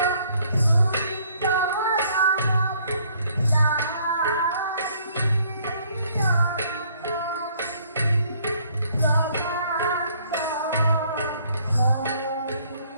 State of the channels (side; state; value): both; inverted; correlation -0.63